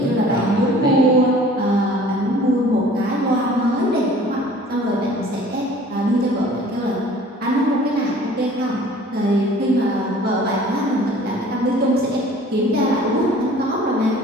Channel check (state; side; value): normal; both; correlation 0.49